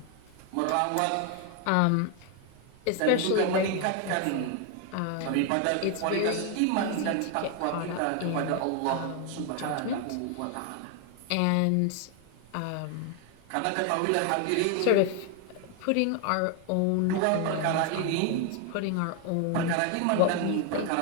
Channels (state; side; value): different; both; correlation 0.01